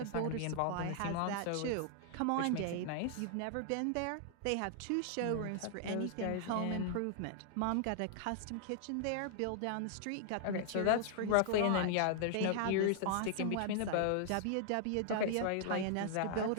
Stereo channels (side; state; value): both; different; correlation -0.01